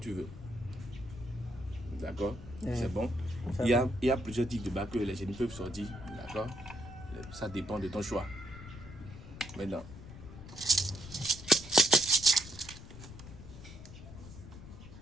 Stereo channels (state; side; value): noise; left; rumble, 14 dB below the sound